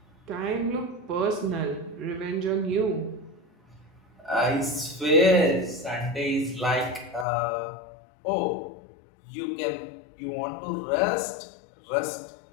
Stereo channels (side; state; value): right; drops out; at 7.2 s